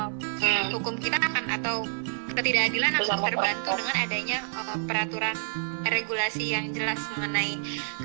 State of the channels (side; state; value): left; silent; digital silence